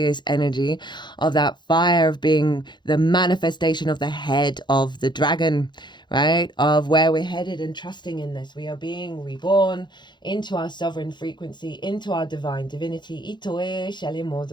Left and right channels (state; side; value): late; right; 0.22 ms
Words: energy of that fire of being the manifestation of the head of the dragon, right? Of where we're headed and trusting in this. We are being reborn into our sovereign frequency, into our divine divinity. Itoe shele